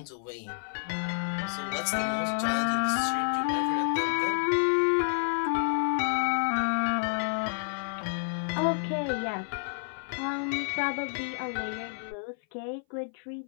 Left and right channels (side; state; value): right; silent; 57 dB below the other